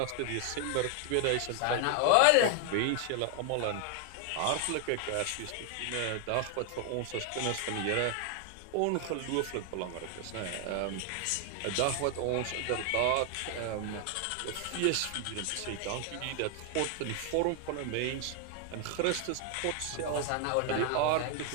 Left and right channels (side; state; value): both; different; correlation 0.00